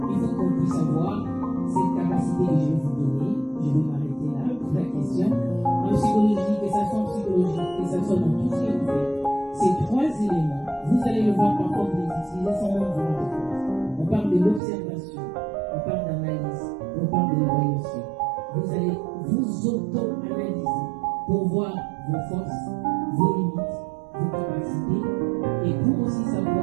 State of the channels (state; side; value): drops out; left; at 14.6 s